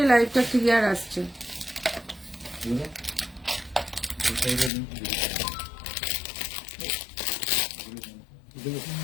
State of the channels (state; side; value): drops out; right; at 4.7 s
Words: লাইভটা ক্লিয়ার আসছে।